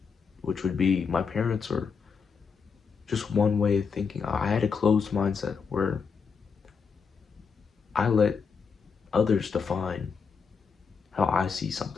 which would be my parents, or just one way of thinking. I had a closed mindset where I let others define how I see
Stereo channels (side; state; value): right; quieter; 5.7 dB